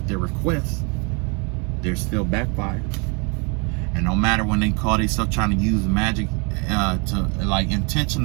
their requests, they're still backfired. And no matter when they call themselves trying to use magic, to like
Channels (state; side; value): quieter; left; 33.1 dB